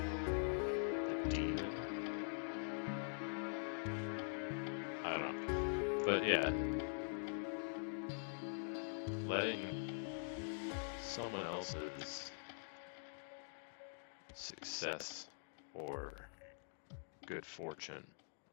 The Demon. I don't know. But yeah, letting someone else's success or good fortune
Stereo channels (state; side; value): silent; right; digital silence